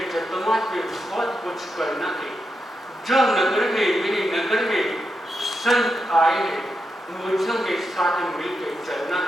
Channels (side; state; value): both; normal; correlation 0.85